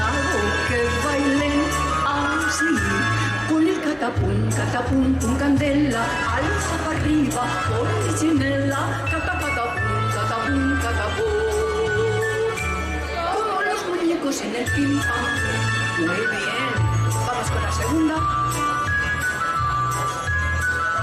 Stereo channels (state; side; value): identical; both; correlation 1.00